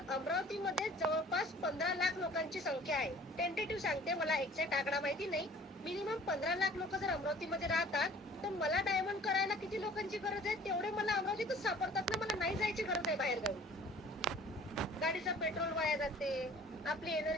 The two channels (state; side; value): normal; both; correlation 0.50